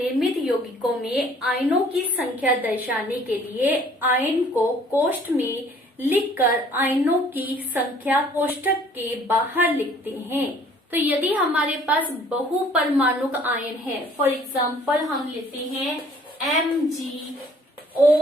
यौगिकों में आयनों की संख्या दर्शाने के लिए आयन को कोष्ठ में लिखकर आयनों की संख्या कोष्ठक के बाहर लिखते हैं। तो यदि हमारे पास बहुपरमाणुक आयन है, फॉर एग्जाम्पल हम लेते हैं MgOH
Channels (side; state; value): both; normal; correlation 0.56